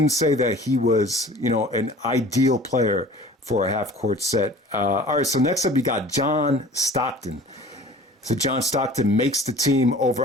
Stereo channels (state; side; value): normal; both; correlation 0.45